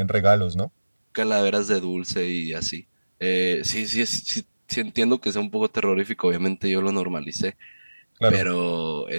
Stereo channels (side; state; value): both; inverted; correlation -1.00